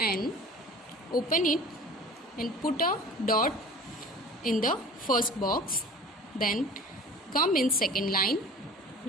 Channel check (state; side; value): normal; both; correlation 0.41